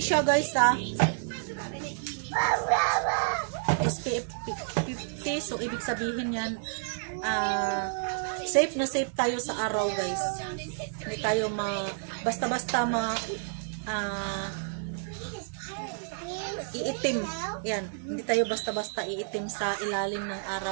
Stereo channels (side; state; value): left; silent; 58 dB below the other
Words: siya guys ha. SPF 50. So, ibig sabihin yan, safe na safe tayo sa araw guys. Hindi tayo basta-basta iitim. Yan. Hindi tayo basta-basta iitim sa ilalim ng